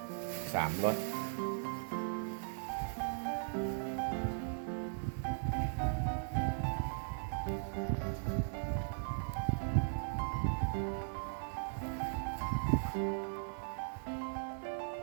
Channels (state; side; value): silent; left; digital silence